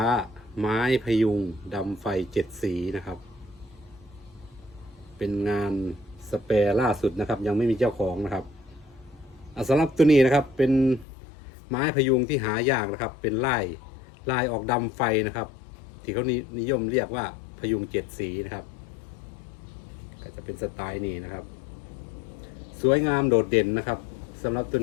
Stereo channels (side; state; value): right; drops out; at 11.1 s